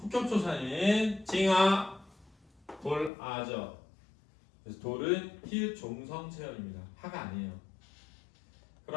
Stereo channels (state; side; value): drops out; right; at 3.1 s